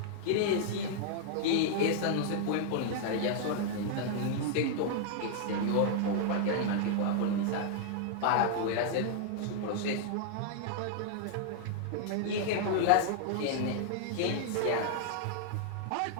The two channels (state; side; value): different; both; correlation -0.01